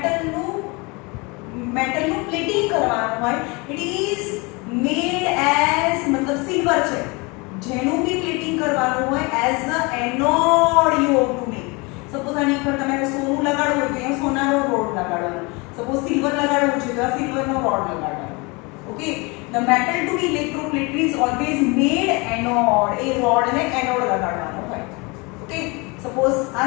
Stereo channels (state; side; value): quieter; right; 27.5 dB